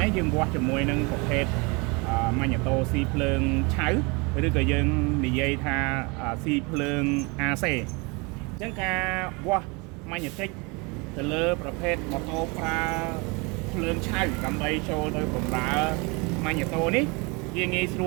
នេះយើងវាស់ជាមួយនឹងប្រភេទម៉ាញេតូស៊ីភ្លើងឆៅឬក៏យើងនិយាយថាស៊ីភ្លើង AC អញ្ចឹងការវាស់ម៉ាញេទិកទៅលើប្រភេទម៉ូតូប្រើភ្លើងឆៅដើម្បីចូលទៅបម្រើម៉ាញេតូនេះវាងាយស្រ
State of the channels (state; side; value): quieter; left; 28.7 dB